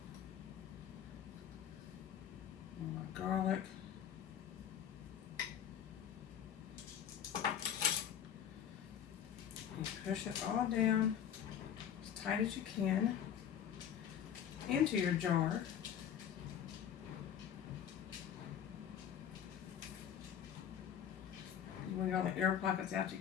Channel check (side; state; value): right; quieter; 9.2 dB